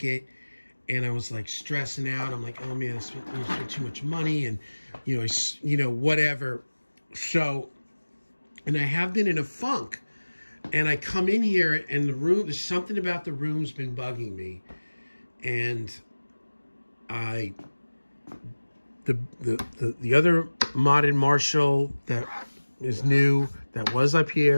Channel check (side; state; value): both; inverted; correlation -1.00